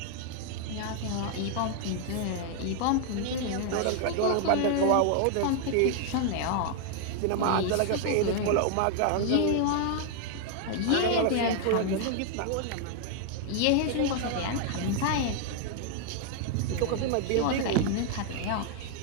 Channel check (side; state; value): both; different; correlation 0.00